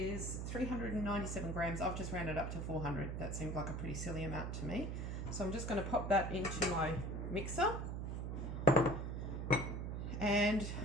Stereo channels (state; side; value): noise; right; hum, 3 dB below the sound